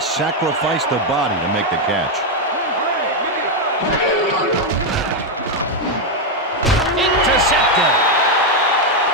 sacrifice the body to make the catch. Intercepted.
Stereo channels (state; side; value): normal; both; correlation 0.03